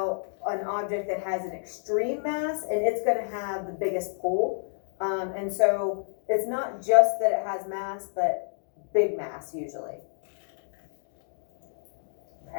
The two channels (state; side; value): silent; right; digital silence